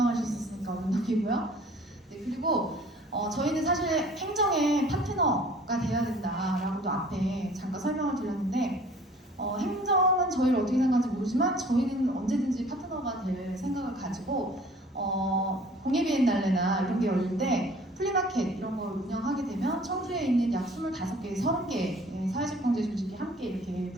언덕이고요. 네, 그리고 저희는 사실 행정의 파트너가 돼야 된다라고도 앞에 잠깐 설명을 드렸는데 행정은 저희를 어떻게 생각하는지 모르지만 저희는 언제든지 파트너가 될 생각을 가지고 공예비엔날레나 이런 게 열릴 때 플리마켓 이런 걸 운영하게 되면 청주에 있는 약 25개, 30개 사회적 경제 조직이 함께 이렇게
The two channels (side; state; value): both; normal; correlation 0.51